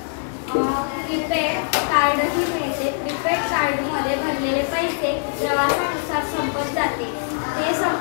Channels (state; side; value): silent; right; 64 dB below the other